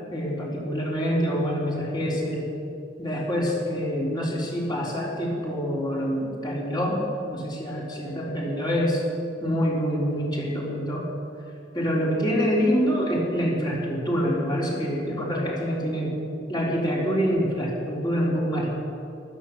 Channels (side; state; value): both; normal; correlation 0.66